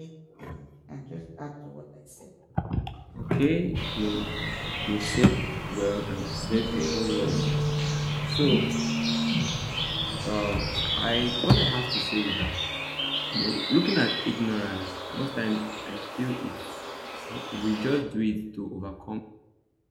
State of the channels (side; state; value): both; identical; correlation 1.00